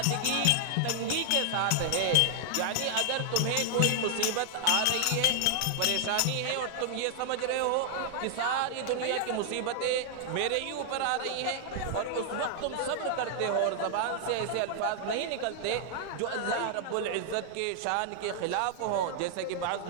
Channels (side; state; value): both; different; correlation 0.00